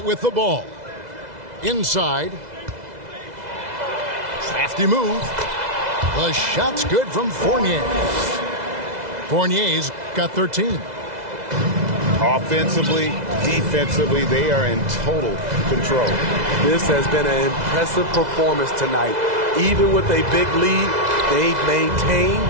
with the ball. Inside. Crafty move. The shot's good from Fournier. Fournier's got 13. Offensively, defensively, they are in total control. This has been an impressive performance tonight. Even with a big lead, they've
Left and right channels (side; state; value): left; late; 2.0 ms